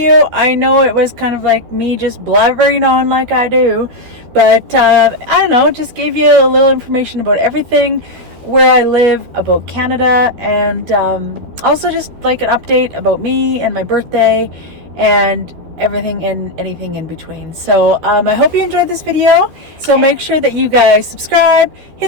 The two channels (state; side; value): late; left; 13 ms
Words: I know it was kind of like me just blabbering on like I do, but I don't know, just gave you a little information about everything, where I live, about Canada, and also just like an update about me and my birthday and everything and anything in between. So I hope you enjoyed this video. So make sure that you guys subscribe,